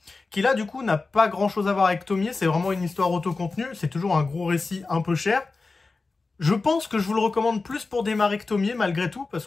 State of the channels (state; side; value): quieter; right; 3.9 dB